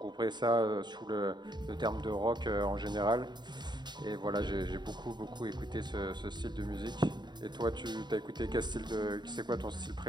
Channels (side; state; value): left; late; 0.21 ms